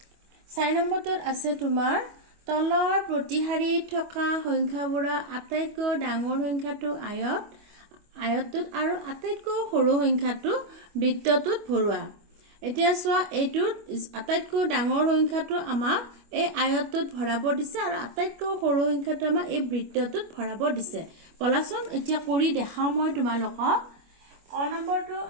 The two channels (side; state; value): left; late; 25 ms